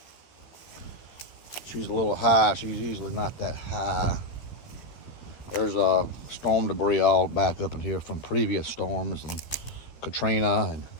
She's a little high. She's usually not that high. There's storm debris all back up in here from previous storms and Katrina and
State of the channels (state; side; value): late; right; 13 ms